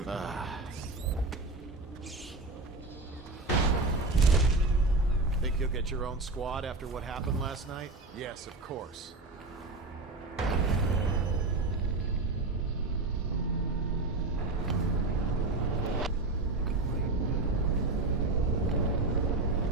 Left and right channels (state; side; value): quieter; left; 3.3 dB